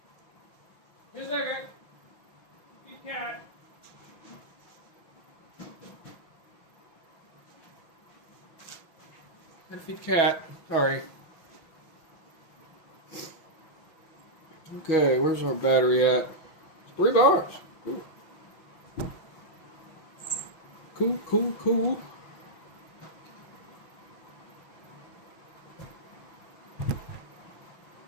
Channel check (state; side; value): late; right; 6.3 ms